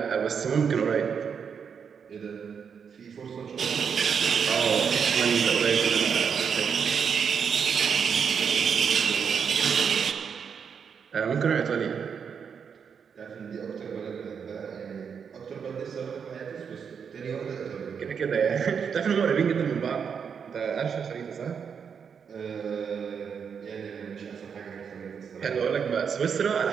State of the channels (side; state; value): left; quieter; 6.8 dB